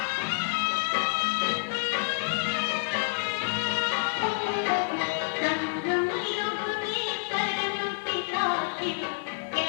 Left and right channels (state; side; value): silent; right; 59 dB below the other